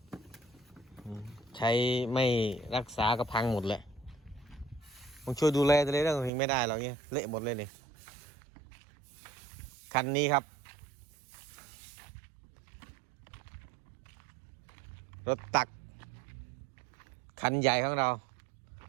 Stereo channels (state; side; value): drops out; left; at 6.3 s